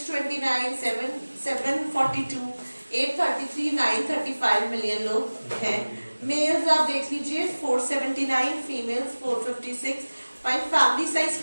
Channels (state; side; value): inverted; both; correlation -1.00